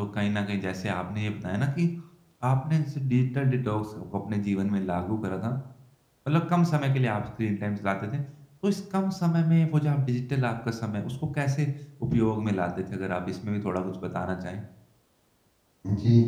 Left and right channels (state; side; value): identical; both; correlation 1.00